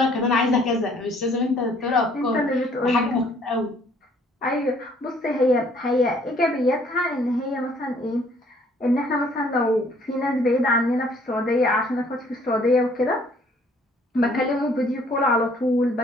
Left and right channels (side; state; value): both; normal; correlation 0.61